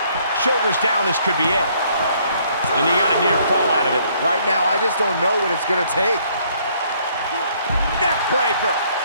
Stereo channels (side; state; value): both; inverted; correlation -0.65